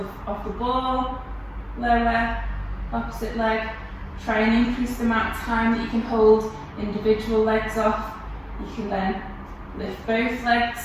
ball, lower, opposite leg. Try and increase the amount of time that you can hold individual legs off. You can then lift both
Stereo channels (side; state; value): both; identical; correlation 1.00